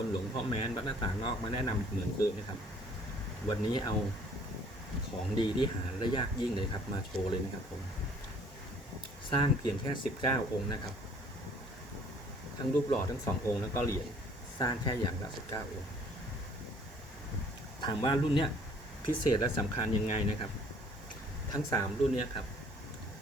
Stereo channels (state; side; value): normal; both; correlation 0.57